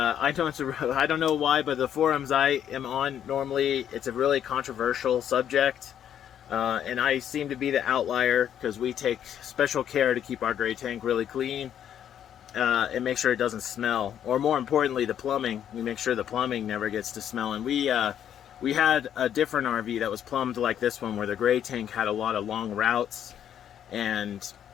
don't know why, but the forums I am on, normally it's a really controversial subject. And I seem to be the outlier because we take special care to keep our gray tank really clean and make sure it doesn't smell. Or more importantly, the plumbing. We make sure the plumbing never gets to smell. And we had a different RV that was plumbed like this one, where the gray tank had a lot of long routes. And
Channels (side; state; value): right; quieter; 9.7 dB